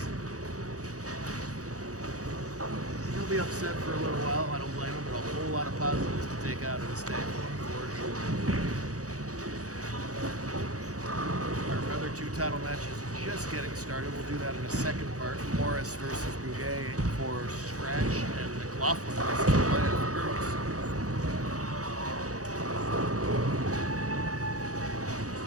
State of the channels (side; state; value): left; late; 0.66 ms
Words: He'll be upset for a little while. I don't blame him, but a whole lot of positives to take out of this day for sure. Our other 2 title matches just getting started. We'll do that in a second part. Morris versus Bouguet for scratch, and McLaughlin versus Playa for girls.